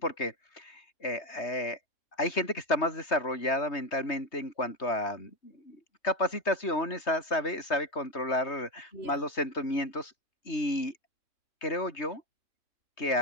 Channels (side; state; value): right; late; 3.2 ms